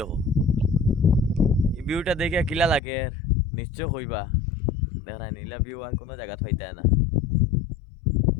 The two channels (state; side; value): drops out; right; at 2.8 s